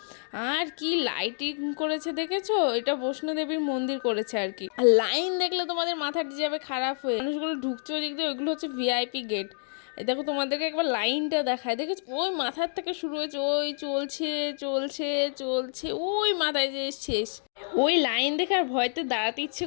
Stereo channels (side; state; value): right; silent; 59 dB below the other